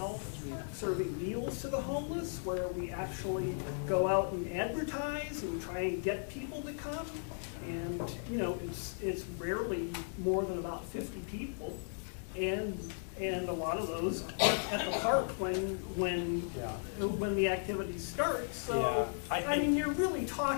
serving meals to the homeless, where we actually go out and advertise and try and get people to come. And, you know, it's rarely more than about 50 people. And a lot of those aren't at the park when the activity starts. So, yeah. I mean, you're really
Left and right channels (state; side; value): silent; right; digital silence